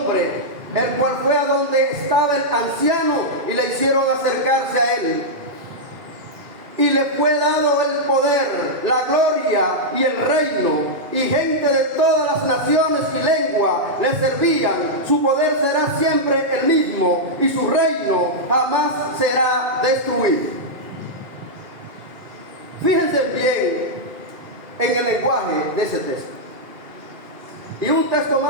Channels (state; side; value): late; left; 2.4 ms